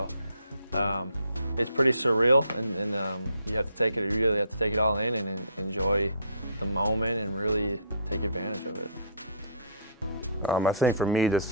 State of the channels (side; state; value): both; inverted; correlation -0.56